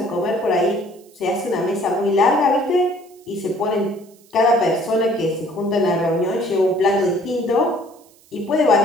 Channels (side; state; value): right; noise; hiss, 29 dB below the sound